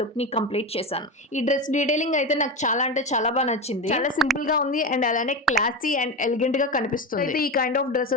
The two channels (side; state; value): both; normal; correlation 0.20